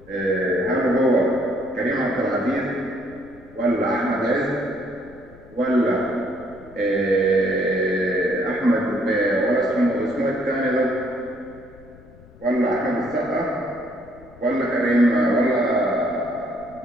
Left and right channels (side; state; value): left; noise; rumble, 23 dB below the sound